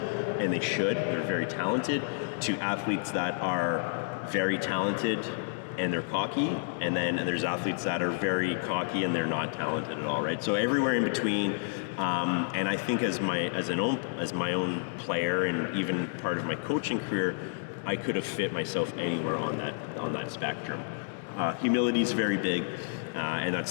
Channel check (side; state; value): right; silent; digital silence